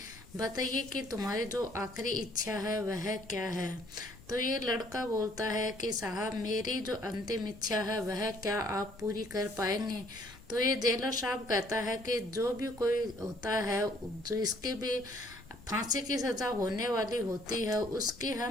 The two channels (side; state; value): left; noise; rumble, 21 dB below the sound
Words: बताइए कि तुम्हारी जो आखिरी इच्छा है वह क्या है। तो ये लड़का बोलता है कि साहब, मेरी जो अंतिम इच्छा है वह क्या आप पूरी कर पाएंगे। तो ये जेलर साहब कहता है कि जो भी कोई होता है, जो इसके भी फांसी की सजा होने वाली होती है, उसकी